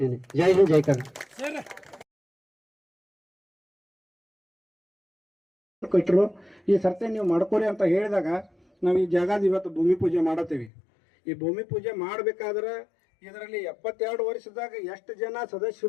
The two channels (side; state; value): right; drops out; at 10.7 s